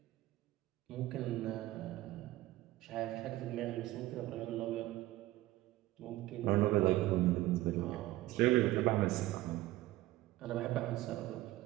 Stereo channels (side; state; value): left; quieter; 16.6 dB